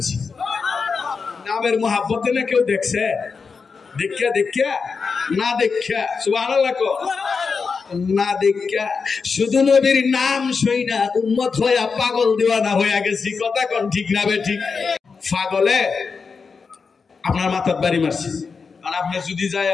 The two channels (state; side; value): quieter; right; 5.1 dB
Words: নামের মহাব্বতে না কেউ দেখছে? দেখা দেখা না দেখা, সুবহানাল্লাহ কো, না দেখা শুধু নবীর নাম শুইনা উম্মত হইয়া পাগল দিওয়ানা হইয়া গেছি। কথা কোন ঠিক না ঠিক? পাগলে আপনার মাথার বাড়ি মারছে। আর আপনি যদি যায়